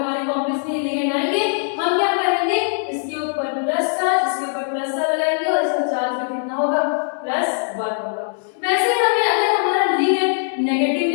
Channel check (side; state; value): right; silent; digital silence